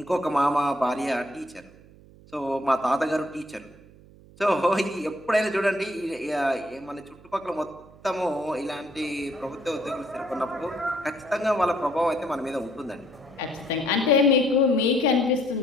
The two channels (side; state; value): right; noise; hum, 23 dB below the sound